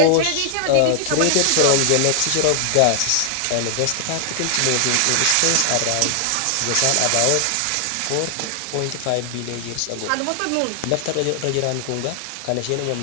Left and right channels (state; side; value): different; both; correlation 0.00